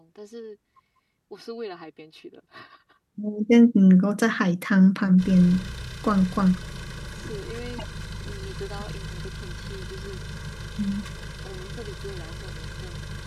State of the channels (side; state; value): both; identical; correlation 1.00